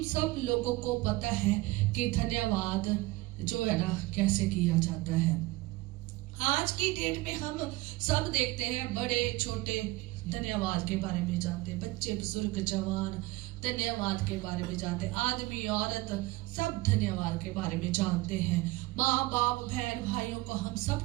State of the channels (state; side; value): quieter; left; 20.0 dB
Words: सब लोगों को पता है कि धन्यवाद जो है ना कैसे किया जाता है। आज की डेट में हम सब देखते हैं, बड़े छोटे धन्यवाद के बारे में जानते हैं, बच्चे बुजुर्ग जवान धन्यवाद के बारे में जानते हैं, आदमी औरत सब धन्यवाद के बारे में जानते हैं। माँ बाप बहन भाइयों को हम